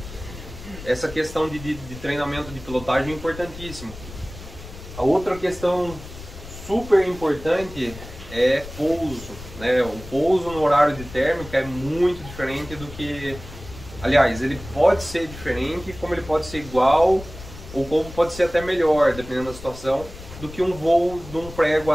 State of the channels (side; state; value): left; noise; rumble, 14 dB below the sound